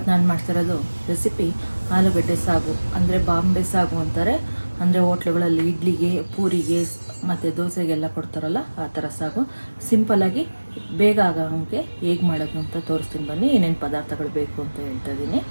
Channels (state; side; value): inverted; both; correlation -1.00